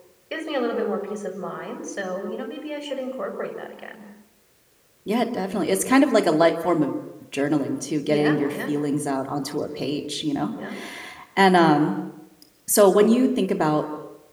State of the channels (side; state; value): both; identical; correlation 1.00